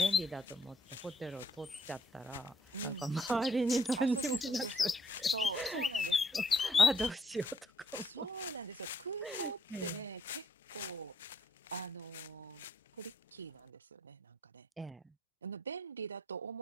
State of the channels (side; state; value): both; normal; correlation 0.70